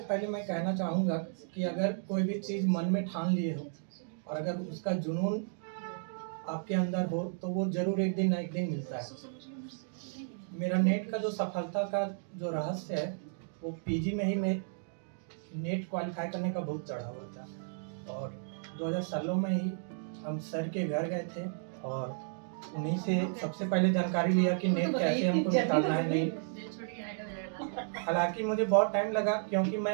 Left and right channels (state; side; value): silent; left; digital silence